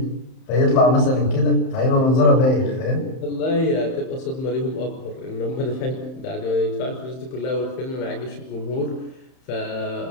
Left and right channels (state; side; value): late; right; 31 ms